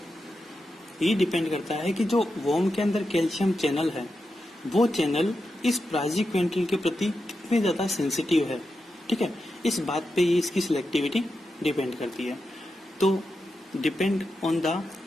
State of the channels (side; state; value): both; normal; correlation 0.88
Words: है कि जो वॉर्म के अंदर कैल्शियम चैनल है, वो चैनल इस प्राइजिक्विंटल के प्रति कितने ज्यादा सेंसिटिव है। ठीक है, इस बात पे ये इसकी सिलेक्टिविटी डिपेंड करती है। तो depend on the